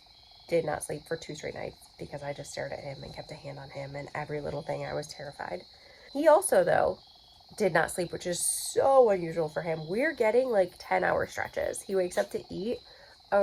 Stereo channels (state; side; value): identical; both; correlation 1.00